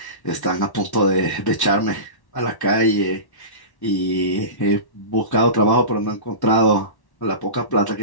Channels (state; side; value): late; right; 1.1 ms